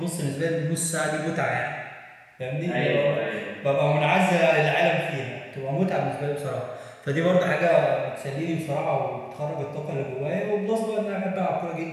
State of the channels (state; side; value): identical; both; correlation 1.00